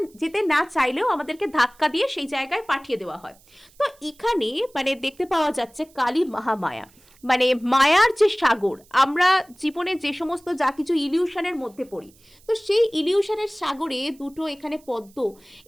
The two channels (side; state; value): right; noise; hiss, 29 dB below the sound